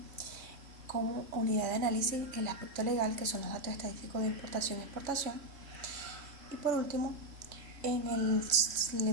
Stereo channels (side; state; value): left; late; 2.7 ms